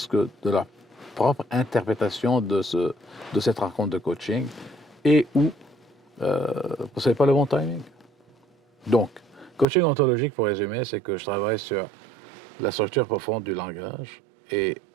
que de leur propre interprétation de cette rencontre de coaching, et ou ce n'est pas le bon timing. Donc, coaching ontologique, pour résumer, c'est que je travaille sur la structure profonde du langage, et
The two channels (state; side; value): drops out; left; at 9.7 s